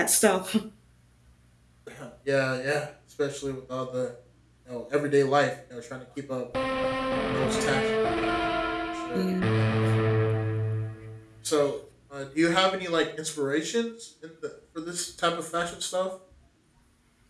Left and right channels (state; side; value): identical; both; correlation 1.00